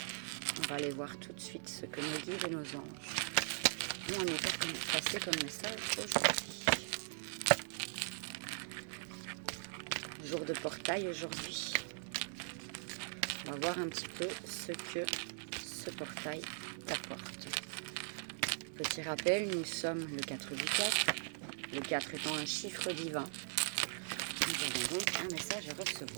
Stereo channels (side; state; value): left; silent; digital silence